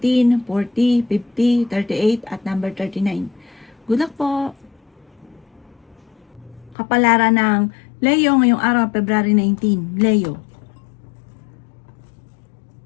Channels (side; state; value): right; drops out; at 6.8 s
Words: 40, 50, 38 at number 39. Good luck po! Kapalaran ng Leo ngayong araw, February 19. Leo.